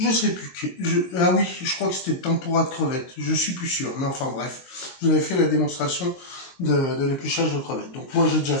Je sais plus. Ah oui, je crois que c'était tempura de crevettes. Je suis plus sûr. Mais enfin bref, je vous avais fait la démonstration de l'épluchage de crevettes. Donc moi j'ai déjà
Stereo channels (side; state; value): right; late; 22 ms